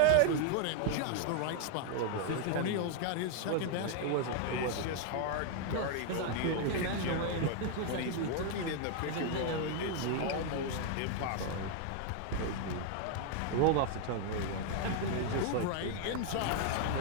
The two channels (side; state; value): both; different; correlation 0.00